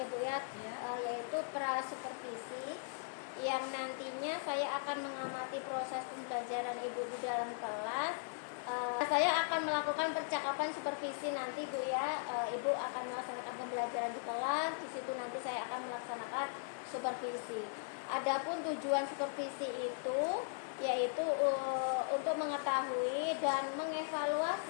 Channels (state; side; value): silent; right; digital silence